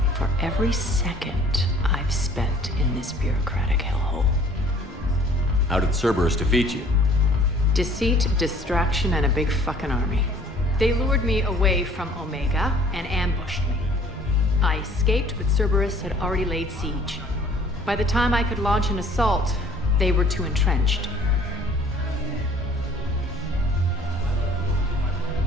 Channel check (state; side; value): normal; both; correlation 0.54